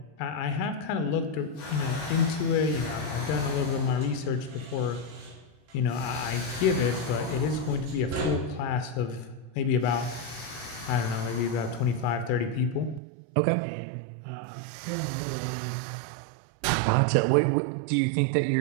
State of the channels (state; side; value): drops out; left; at 13.0 s